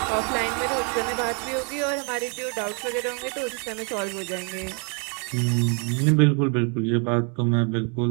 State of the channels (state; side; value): quieter; left; 37.4 dB